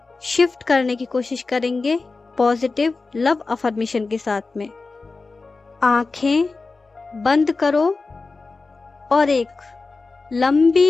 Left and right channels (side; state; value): right; quieter; 3.9 dB